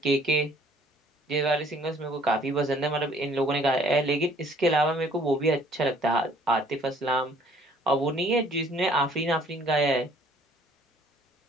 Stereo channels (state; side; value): normal; both; correlation 0.58